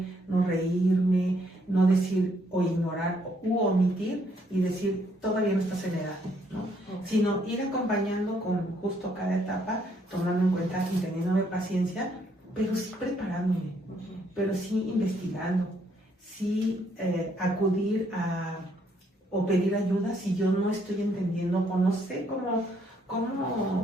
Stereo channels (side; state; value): both; normal; correlation 0.70